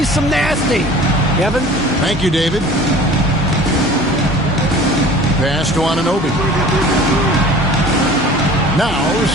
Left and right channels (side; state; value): both; normal; correlation 0.44